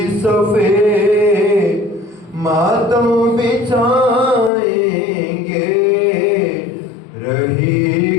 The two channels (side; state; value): right; drops out; at 4.5 s